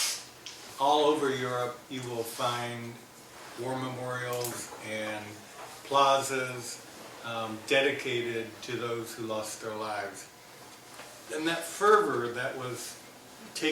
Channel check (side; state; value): both; identical; correlation 1.00